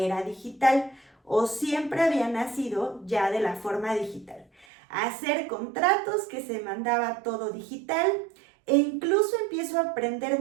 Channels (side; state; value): left; drops out; at 4.7 s